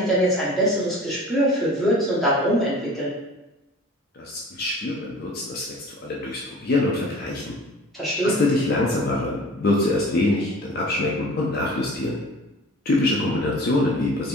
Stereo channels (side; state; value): both; normal; correlation 0.43